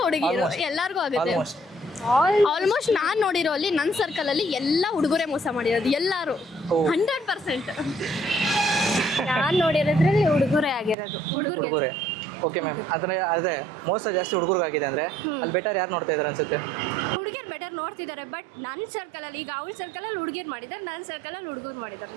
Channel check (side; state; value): left; drops out; at 11.0 s